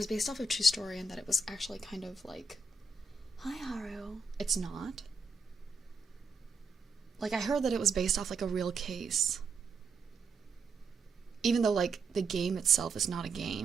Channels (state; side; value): quieter; left; 3.8 dB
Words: based off of a true story, and that it was actually kind of like, hi Haru. It's not. Like, I heard that it was based off, like, a real case. Even though, like, the game itself is not a